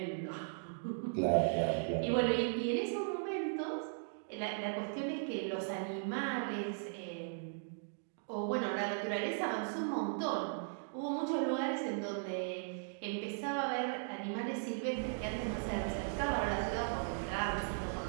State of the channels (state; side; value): silent; left; digital silence